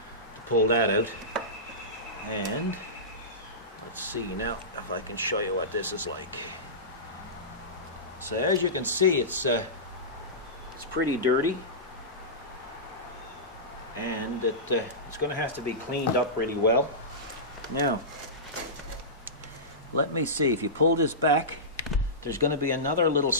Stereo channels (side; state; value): both; normal; correlation -0.18